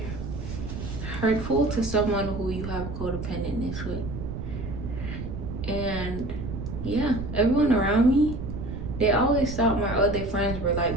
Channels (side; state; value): right; noise; rumble, 7 dB below the sound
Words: hurtful to someone who you have codependentness with. And yeah, everyone around me, they always thought my other friends were